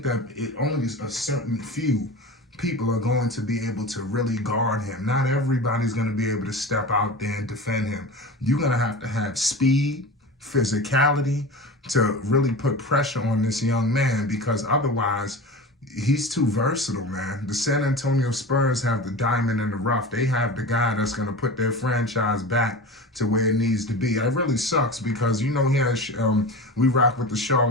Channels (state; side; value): normal; both; correlation 0.31